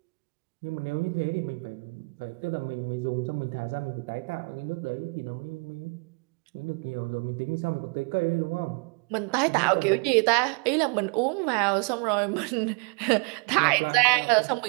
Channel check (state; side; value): quieter; left; 33.8 dB